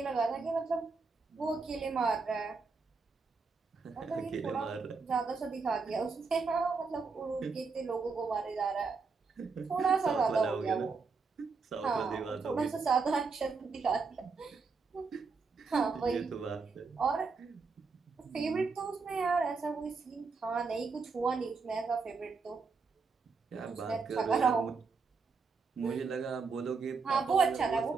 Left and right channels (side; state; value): left; quieter; 4.7 dB